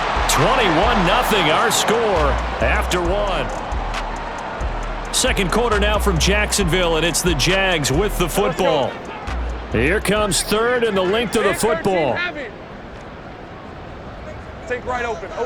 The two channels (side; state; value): both; identical; correlation 1.00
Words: 21-0 our score after one. Second quarter now from Jacksonville, and it's the Jags with the football. Here comes third and the length of the football. Take right open.